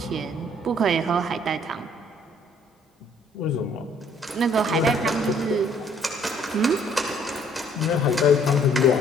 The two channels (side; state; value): both; normal; correlation 0.61